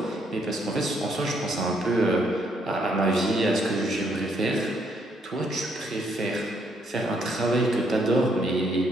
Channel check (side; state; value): both; normal; correlation 0.72